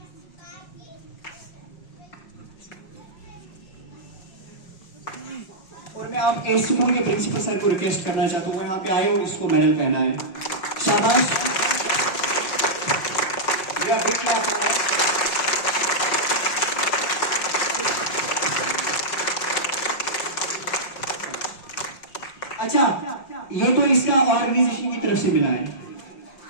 और मैं आप एस स्कूल के प्रिंसिपल सर को रिक्वेस्ट करना चाहता हूँ, वो यहाँ पे आए और इसको मेडल पहना है, शाबाश। अच्छा, ये तो इसका ऑर्गेनाइजेशन की तरफ से मिला है।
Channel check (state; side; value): late; right; 5.4 ms